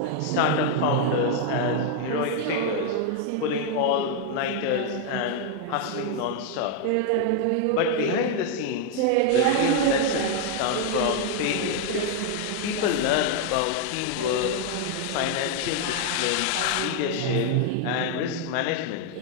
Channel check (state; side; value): different; both; correlation 0.00